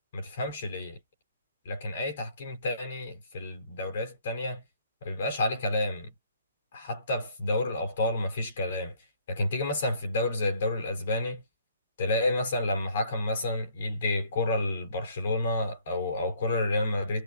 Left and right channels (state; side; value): inverted; both; correlation -0.63